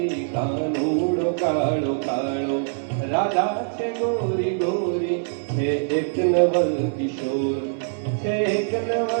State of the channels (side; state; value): left; silent; digital silence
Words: કાનૂડો કાળો કાળો રાધા છે ગોરી ગોરી, છે એક નવલ કિશોર, છે એક